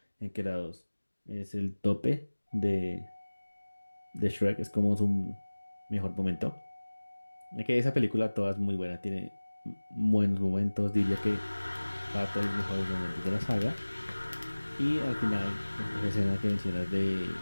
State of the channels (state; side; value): inverted; both; correlation -1.00